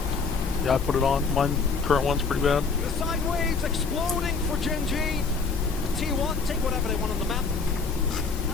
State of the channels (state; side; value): quieter; right; 4.7 dB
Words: Yeah, I put it on. Mine current one's pretty bad. The side waves exploding for Gen G. T1 take whatever they want on the map.